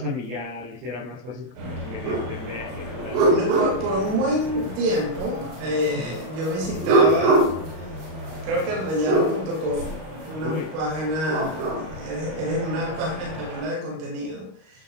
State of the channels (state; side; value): late; left; 32 ms